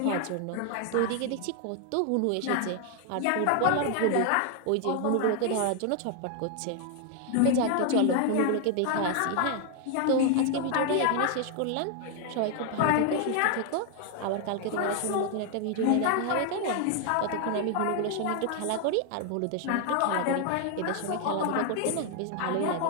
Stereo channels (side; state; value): both; different; correlation 0.00